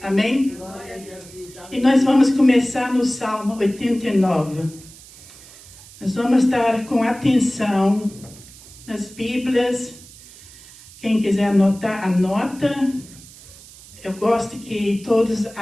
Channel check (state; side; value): noise; right; hiss, 20 dB below the sound